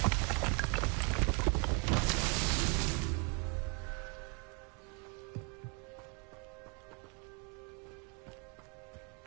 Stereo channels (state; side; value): quieter; left; 34.7 dB